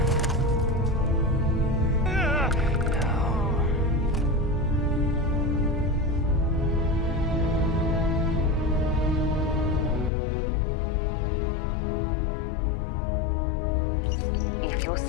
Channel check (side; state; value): right; drops out; at 10.1 s